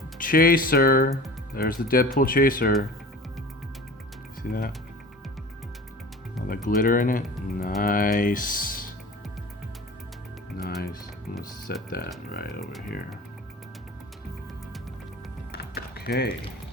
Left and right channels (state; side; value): normal; both; correlation 0.39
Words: chaser. There's the Deadpool chaser. See that? All the glitter in it. Nice. Nice. I'm gonna set that right over here. Okay.